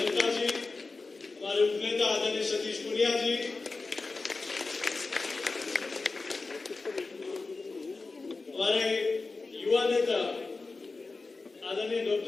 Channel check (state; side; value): quieter; right; 3.8 dB